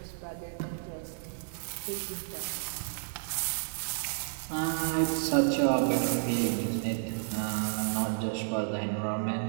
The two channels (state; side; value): silent; left; digital silence